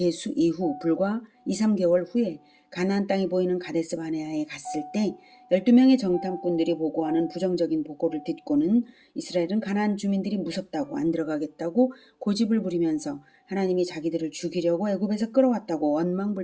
이후 불과 2, 3개월 후에 가나안 땅이 보이는 가데스 바네아에 갔을 때 12명의 정탐꾼들이 보고하는 부정적인 보고를 듣고는 이스라엘은 가나안 주민들이 무섭다고 안 들어가겠다고 고집을 부리면서 하나님이 자기들을 죽이려고 애굽에서 끌어왔다고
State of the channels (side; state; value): both; identical; correlation 1.00